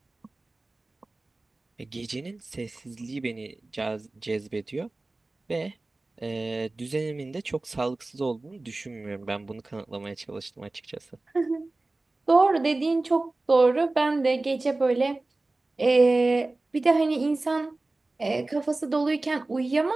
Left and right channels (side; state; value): left; quieter; 3.1 dB